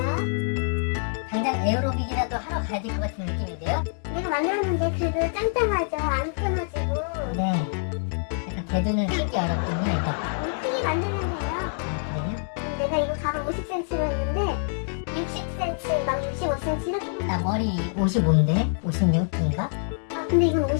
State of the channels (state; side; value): silent; right; digital silence